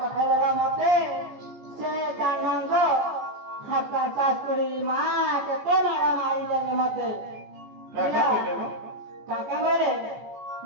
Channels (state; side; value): late; left; 14 ms